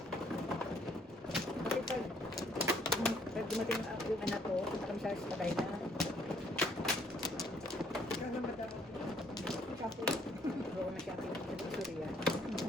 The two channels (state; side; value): normal; both; correlation 0.65